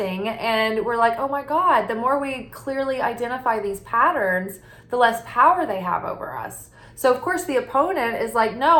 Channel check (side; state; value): both; identical; correlation 1.00